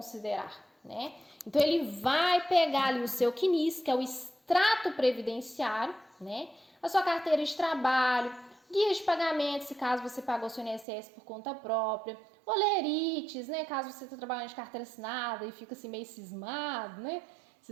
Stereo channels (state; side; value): drops out; left; at 10.9 s